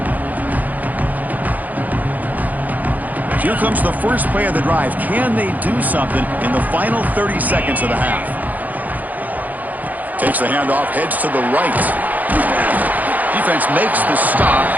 Here comes the first play of the drive. Can they do something in the final 30 seconds of the half? Takes the handoff, heads to the right. Defense makes the stop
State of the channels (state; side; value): late; left; 0.080 ms